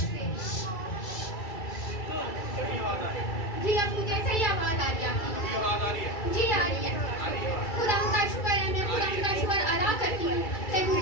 जी, अब मुझे सही आवाज आ रही है। जी आ रही है। खुदा का शुक्र है, मैं खुदा का शुक्र अदा करती हूँ कि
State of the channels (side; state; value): right; late; 2.3 ms